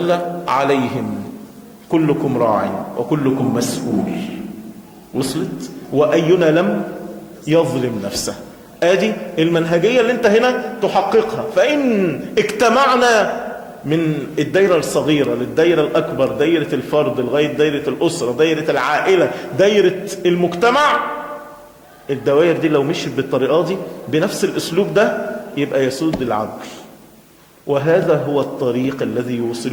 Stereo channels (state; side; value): identical; both; correlation 1.00